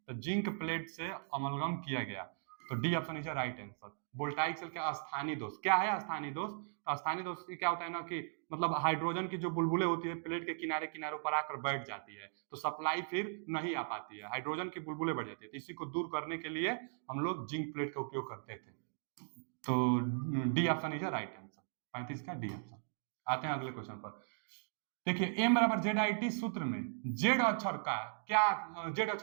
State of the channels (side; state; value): left; silent; digital silence